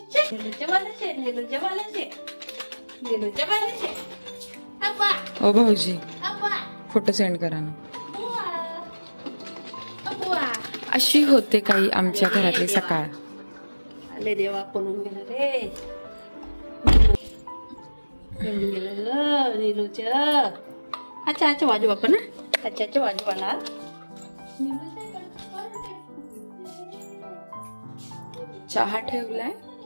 भाऊजी फोटो सेंड करा ना. अशी होते काही आमच्या घरातली सकाळ. आले देवा कोणून गेलं रे. अच्छा अच्छा वाजू बापा ना. अच्छा अच्छा वाजू वाला. चहा ठेवलाय.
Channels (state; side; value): inverted; both; correlation -1.00